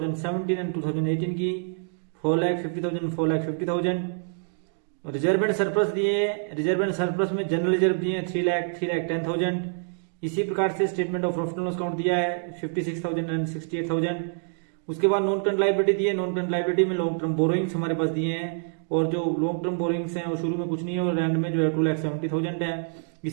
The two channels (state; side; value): silent; left; digital silence